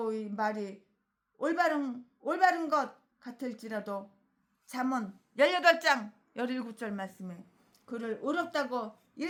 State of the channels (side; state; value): both; identical; correlation 1.00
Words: 말이 올바른 것 같을지라도 잠언 18장 17절 말씀에 그를 의롭다고